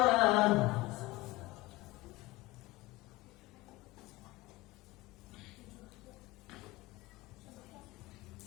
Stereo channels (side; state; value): right; quieter; 19.9 dB